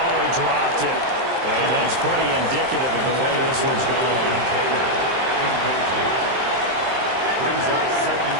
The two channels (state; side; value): late; left; 23 ms